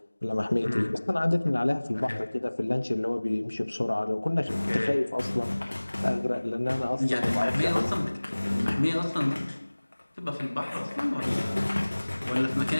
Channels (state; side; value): inverted; both; correlation -1.00